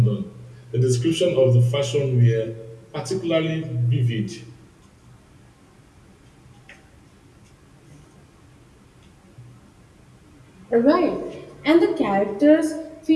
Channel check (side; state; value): both; identical; correlation 1.00